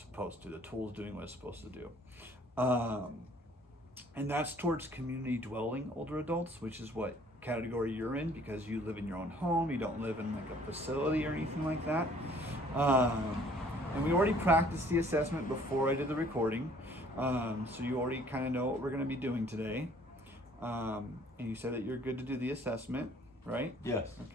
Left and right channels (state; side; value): normal; both; correlation 0.57